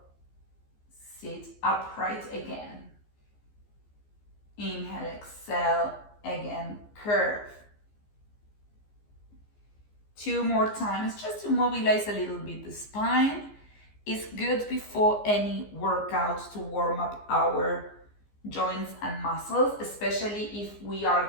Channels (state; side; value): late; right; 15 ms